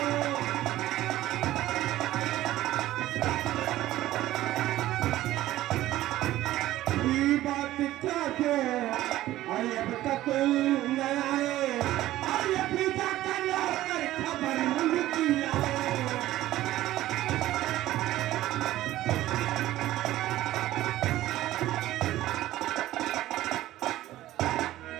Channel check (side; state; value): left; quieter; 15.0 dB